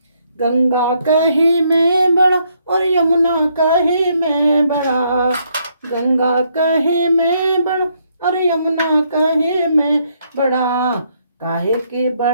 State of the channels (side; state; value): both; inverted; correlation -0.73